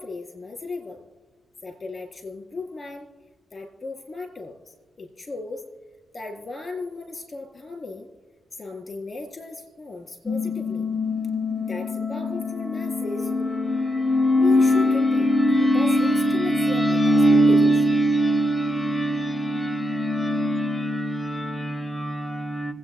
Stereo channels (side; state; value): both; normal; correlation 0.82